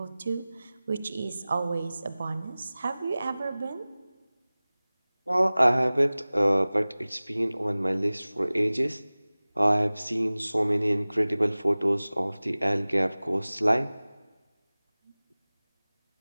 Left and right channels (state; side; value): inverted; both; correlation -0.99